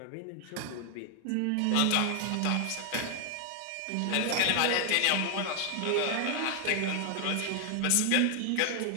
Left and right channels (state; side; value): different; both; correlation 0.00